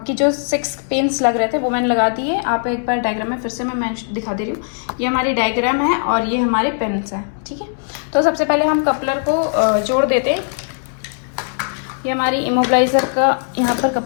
जो 6 पिन्स लग रहे थे वो मैंने लगा दिए। आप एक बार डायग्राम में फिर से मैं दिखा दे रही हूँ। ये हमारी डायग्राम है और ये हमारे पिन्स हैं, ठीक है। तो सबसे पहले हम कपलर को जोड़ देते हैं। ये हमारी इमोबिलाइजर का यहाँ पर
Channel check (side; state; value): right; silent; digital silence